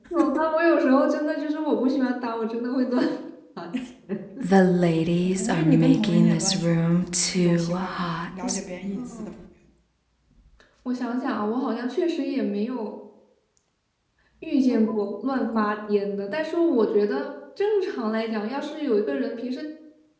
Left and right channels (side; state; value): both; identical; correlation 1.00